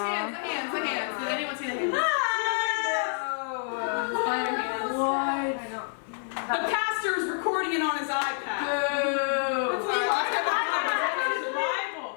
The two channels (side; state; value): right; silent; digital silence